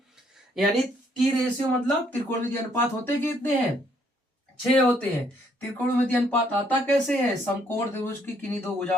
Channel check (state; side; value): normal; both; correlation 0.68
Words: यानी टी रेशियो मतलब त्रिकोणमिति अनुपात होते कितने हैं? 6 होते हैं। त्रिकोणमिति अनुपात आता कैसे है? समकोण त्रिभुज की किन्हीं दो